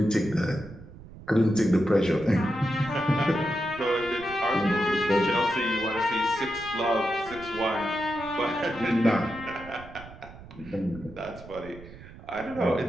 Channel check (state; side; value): noise; right; rumble, 17 dB below the sound